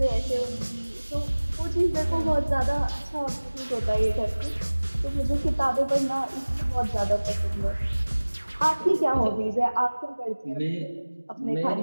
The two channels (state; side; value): inverted; both; correlation -1.00